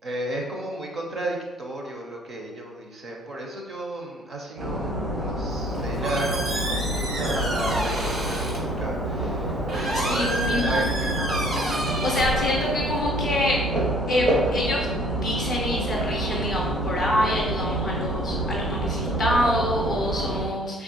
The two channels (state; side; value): normal; both; correlation 0.56